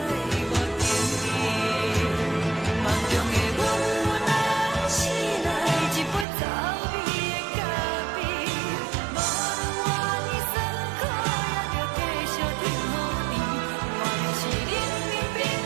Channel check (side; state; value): left; drops out; at 6.2 s